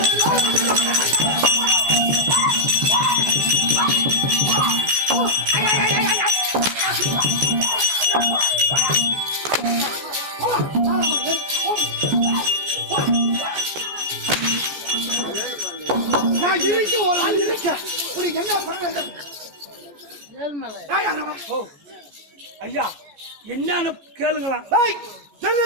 நான் இருக்க ஒரு ஆள் இருக்க உனக்கு என்ன பண்ண ஐயா என்னன்னு கேளுங்களாம்.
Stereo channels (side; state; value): left; late; 14 ms